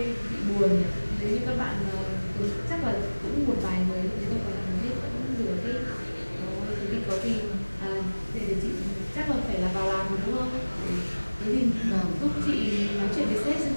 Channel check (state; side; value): inverted; both; correlation -1.00